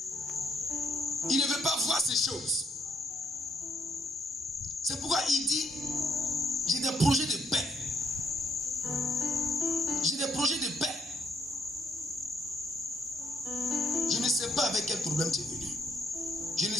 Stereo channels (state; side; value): normal; both; correlation 0.71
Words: Il ne veut pas voir ces choses. C'est pourquoi il dit, j'ai des projets de paix. J'ai des projets de paix. Je ne sais pas avec quel problème tu es venu. Je ne